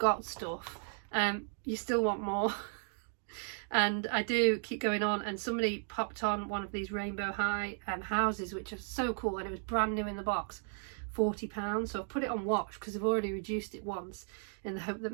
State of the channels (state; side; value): silent; left; 54 dB below the other